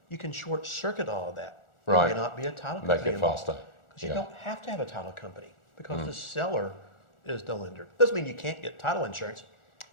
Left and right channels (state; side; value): late; right; 1.4 ms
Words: you can short circuit all of that. Right. There may not be a title company Make it involved. faster. Because you Yeah. don't have to have a title company because the seller is the lender. Doesn't mean you can't get title insurance.